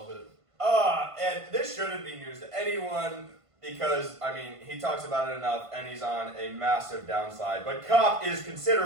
it. And this shouldn't be news to anyone because, I mean, he talks about it enough and he's on a massive downside. But Kopp is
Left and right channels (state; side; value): late; left; 1.5 ms